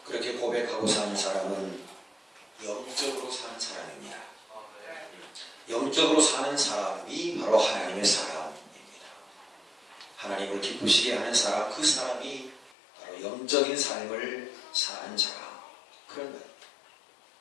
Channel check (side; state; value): right; drops out; at 12.8 s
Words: 그렇게 고백하고 사는 사람은 영적으로 사는 사람입니다. 영적으로 사는 사람이 바로 하나님의 사람입니다. 하나님을 기쁘시게 하는 사람, 그 사람이 바로 영적인 삶을 사는 자라, 그런 말입니다.